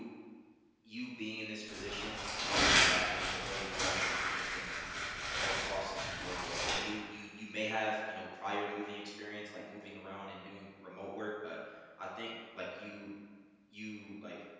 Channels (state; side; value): identical; both; correlation 1.00